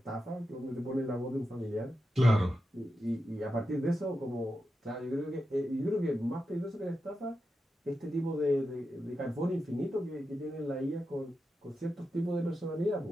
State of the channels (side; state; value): both; normal; correlation 0.89